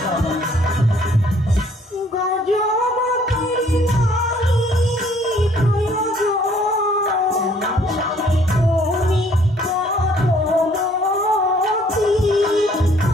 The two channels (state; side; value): normal; both; correlation 0.61